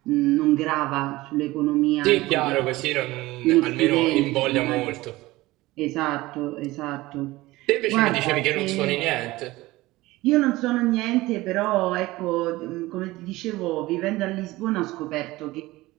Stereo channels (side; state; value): left; quieter; 19.0 dB